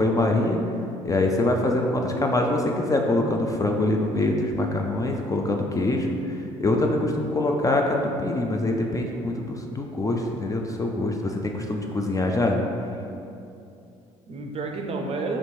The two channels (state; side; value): normal; both; correlation 0.65